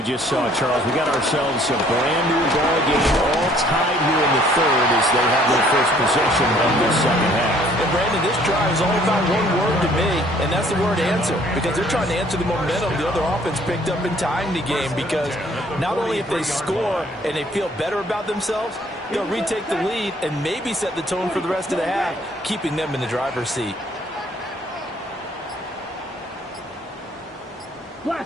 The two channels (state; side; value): normal; both; correlation 0.59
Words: just saw, Charles, we got ourselves a brand-new ball game, all tied here in the third as they have their first possession of this second half. And, Brandon, this drive is all about one word to me, and that's the word answer, because they're trying to answer the momentum the other offense picked up in tying the game, because not only if they score and they feel better about themselves, they'll retake the lead and maybe set the tone for the rest of the half, keeping them in the driver's seat.